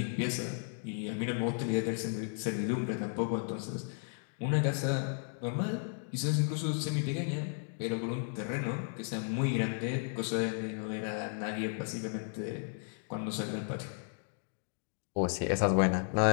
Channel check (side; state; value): right; silent; 55 dB below the other